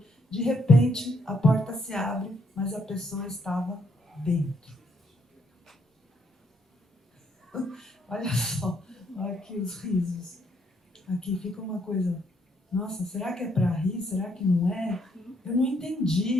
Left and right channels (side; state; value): both; normal; correlation 0.72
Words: De repente, a porta se abre, mas a pessoa estava dentro. Olha só, olha aqui os risos. Aqui fica uma coisa, nossa, será que é para rir? Será que não é? Eu não